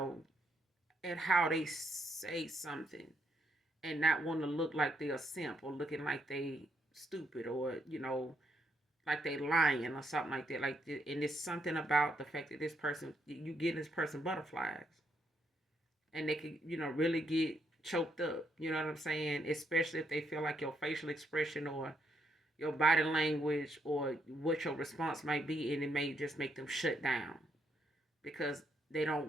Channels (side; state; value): both; normal; correlation 0.76